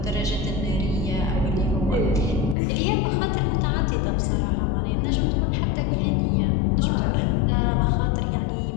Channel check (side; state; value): right; drops out; at 2.6 s